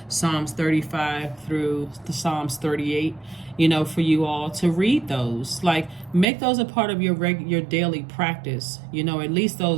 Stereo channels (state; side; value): drops out; left; at 6.2 s